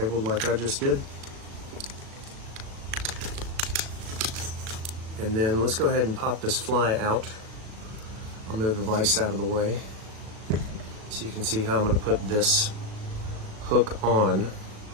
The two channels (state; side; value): late; left; 37 ms